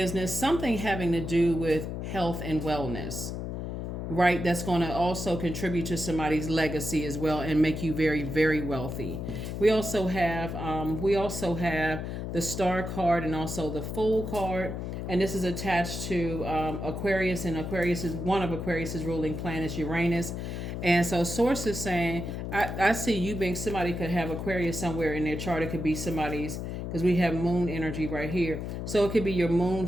something having to do with health and wellness. Right, that's going to also contribute to somebody's legacy as well and make you very, very wealthy. We also have the Star card and also the Fool card. and this is attached to Aquarius, and Aquarius is one of Aquarius's ruling planets, Uranus. And so source is saying, I see you being somebody could have Aquarius somewhere in their chart. It could be somebody's, because we have moon energy right here. So it could be your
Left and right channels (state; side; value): noise; left; hum, 5 dB below the sound